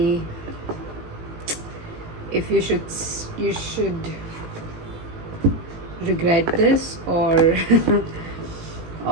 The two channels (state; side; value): late; left; 18 ms